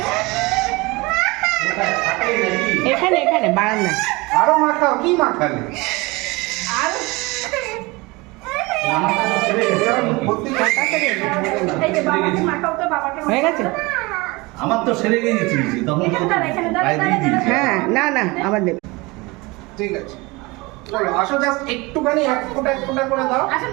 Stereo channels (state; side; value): quieter; left; 24.1 dB